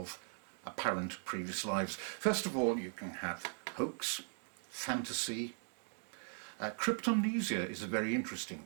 apparent previous lives. First of all, you can have hoax, fantasy. Cryptomnesia is a very interesting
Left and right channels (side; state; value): left; silent; 52 dB below the other